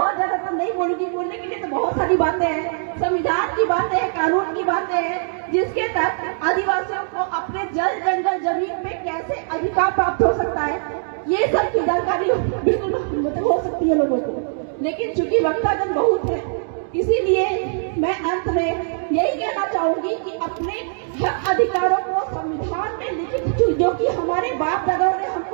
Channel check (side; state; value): left; silent; digital silence